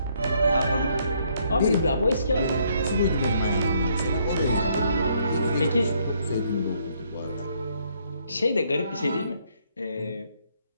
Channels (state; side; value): inverted; both; correlation -0.69